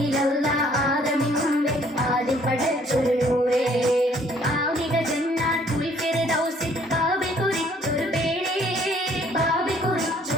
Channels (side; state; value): both; normal; correlation 0.61